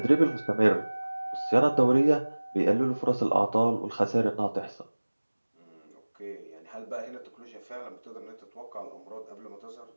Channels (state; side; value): inverted; both; correlation -1.00